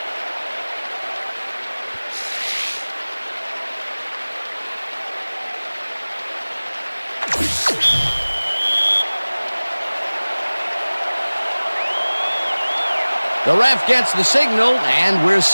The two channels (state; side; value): inverted; both; correlation -1.00